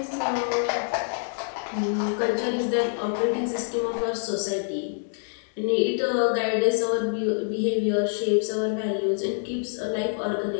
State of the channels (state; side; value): silent; right; digital silence